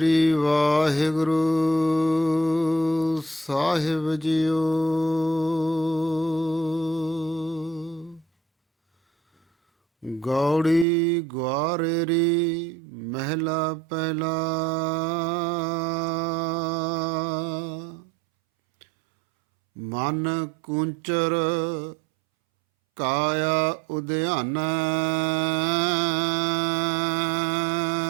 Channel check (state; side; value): drops out; left; at 10.9 s